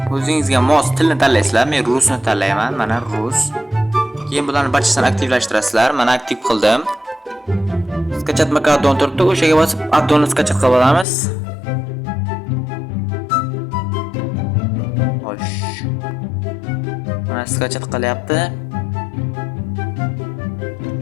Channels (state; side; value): drops out; right; at 11.1 s